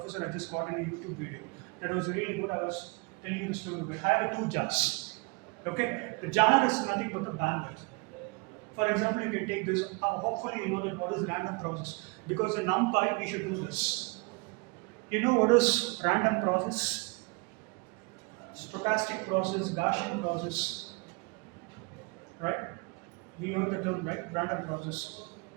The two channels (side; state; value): left; quieter; 29.7 dB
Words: I just got in a YouTube video. That was really good. I was telling you the story. I have two jars. Okay? The jar is nothing but the bandwidth. For example, you can take this. Hopefully, you know that what is random process. Because in NumPy, we should do this. You know what is random process? Stochastic process, Gaussian process. Right? We heard the term, right? Random process.